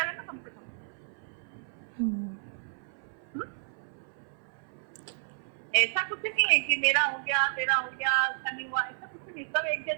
है ना कम से कम। ऐसा कुछ नहीं है कि मेरा हो गया तेरा हो गया ऐसा नहीं हुआ, ऐसा कुछ नहीं, सब एक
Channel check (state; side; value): silent; left; 57 dB below the other